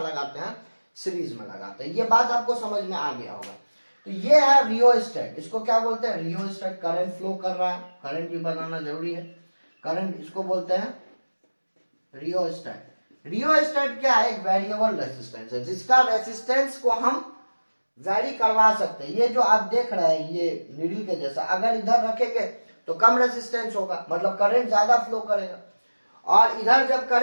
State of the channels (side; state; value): both; inverted; correlation -1.00